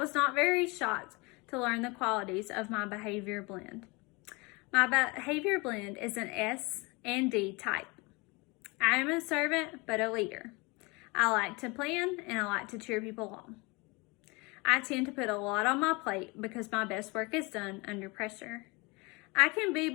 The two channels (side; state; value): right; quieter; 26.6 dB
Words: not very shocked to learn the qualities of my behavior blend. My behavior blend is an S and D type. I am a servant, but a leader. I like to plan and I like to cheer people on. I tend to put a lot on my plate because my best work is done under pressure. I can be